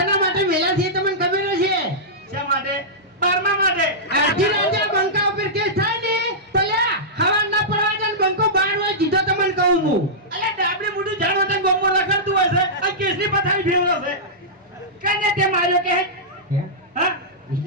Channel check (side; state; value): both; normal; correlation -0.14